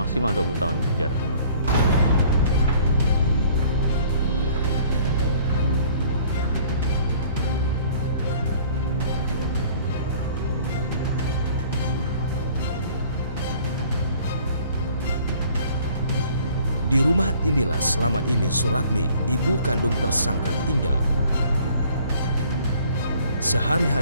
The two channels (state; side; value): inverted; both; correlation -0.54